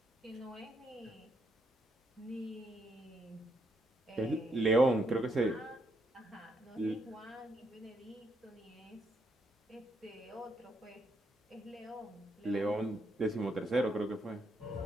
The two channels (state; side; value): normal; both; correlation 0.76